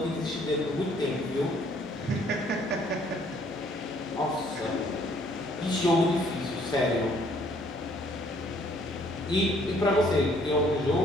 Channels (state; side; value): noise; right; hum, 22 dB below the sound